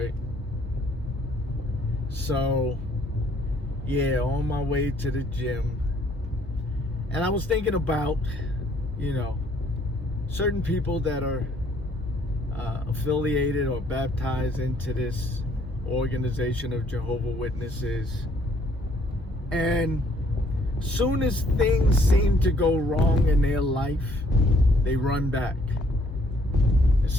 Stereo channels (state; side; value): normal; both; correlation 0.64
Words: So, yeah, on my way to the gym, and I was thinking about, you know, certain people that are affiliated or baptized into this organization of Jehovah's Witnesses, and soon as things seem to go wrong in their life, they run back.